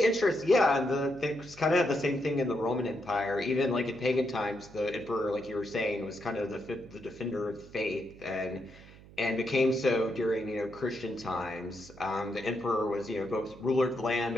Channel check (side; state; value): right; noise; hum, 20 dB below the sound